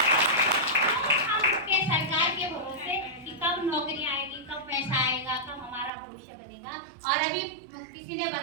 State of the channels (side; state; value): left; drops out; at 5.9 s